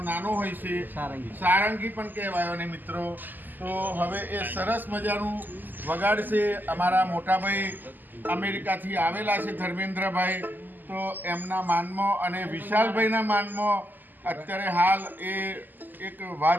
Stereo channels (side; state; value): left; late; 0.088 ms